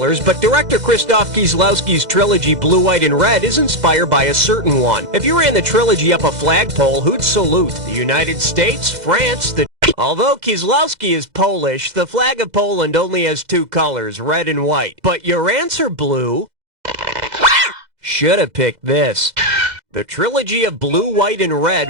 but director Krzysztof Kieslowski's trilogy Blue, White, and Red is inspired by a certain one. If you ran the trilogy up a flagpole, who'd salute? The United States, France, the... Although Kieslowski is Polish, the flag of Poland only has 2 colors, red and white. But your answer, Blue... Should have picked this. The trilogy of Blue, White, and Red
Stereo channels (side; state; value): left; late; 2.0 ms